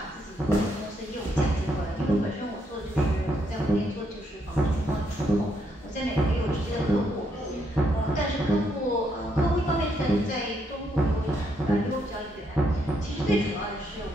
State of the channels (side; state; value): both; normal; correlation 0.75